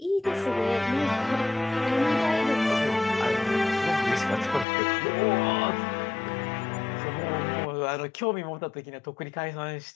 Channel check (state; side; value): drops out; right; at 4.7 s